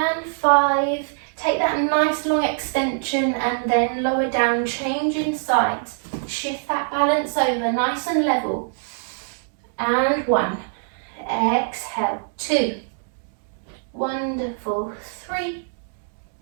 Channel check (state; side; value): silent; left; digital silence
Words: 5. Take that nice long extension and then lower down, changing sides. Shift that balance over, nice and level. And 1. Exhale. 2. Wonderful. 3.